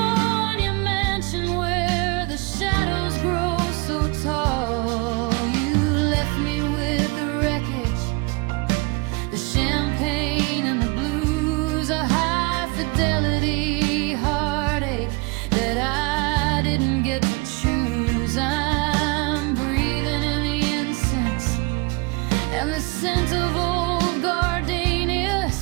mansion where the shadows grow so tall. You left me with the wreckage, the champagne and the blues, a high-fidelity heartache that I didn't get to choose. I'm breathing in the incense and the scent of old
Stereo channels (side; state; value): left; quieter; 27.9 dB